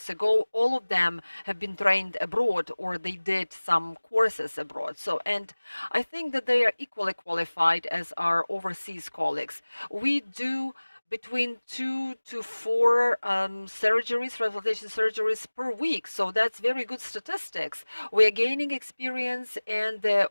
ago. All of them have been trained abroad or they did some courses abroad. So, and I think that they are equally qualified as our overseas colleagues. We do between 2 to 4 surgeries, transplantation surgeries per week. So that's very good statistics. We are gaining experience and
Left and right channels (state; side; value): inverted; both; correlation -1.00